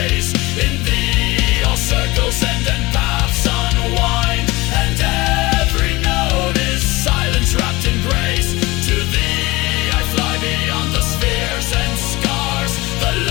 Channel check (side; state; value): right; quieter; 21.7 dB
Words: In thee all circles end and paths unwind, and every note is silence wrapped in grace. To thee I fly beyond the spheres and scars, the